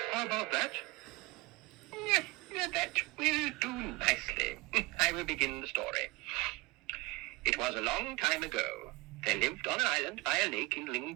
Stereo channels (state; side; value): quieter; left; 23.8 dB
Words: How about that? That will do nicely. I will begin the story. It was a long time ago. There lived on an island by a lake in Ling